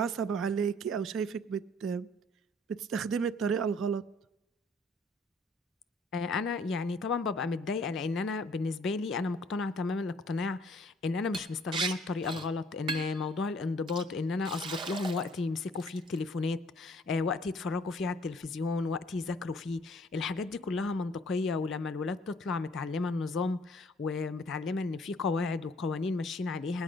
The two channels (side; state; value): both; normal; correlation 0.59